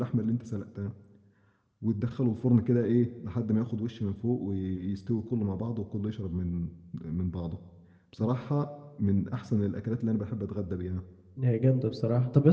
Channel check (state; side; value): identical; both; correlation 1.00